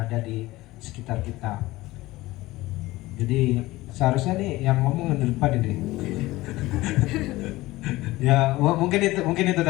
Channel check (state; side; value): quieter; right; 18.7 dB